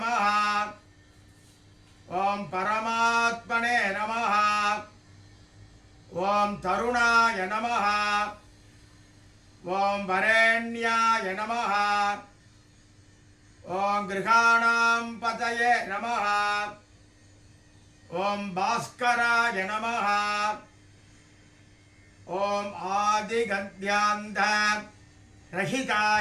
ஓம் பரமாத்மனே நமஹ. ஓம் தருணாய நமஹ. ஓம் வரேண்யாய நமஹ. ஓம் கிருஹாணாம் பதயே நமஹ. ஓம் பாஸ்கராய நமஹ. ஓம் ஆதிகத்யாந்த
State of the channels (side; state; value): both; identical; correlation 1.00